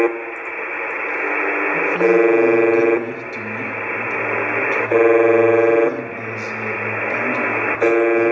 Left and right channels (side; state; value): both; identical; correlation 1.00